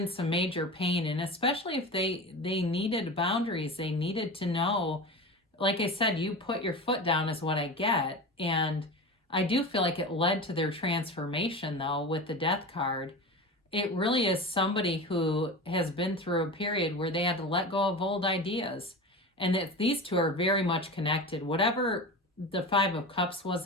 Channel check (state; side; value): normal; both; correlation 0.29